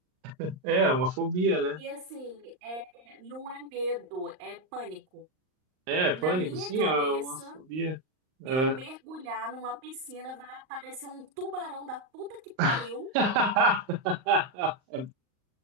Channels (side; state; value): left; late; 38 ms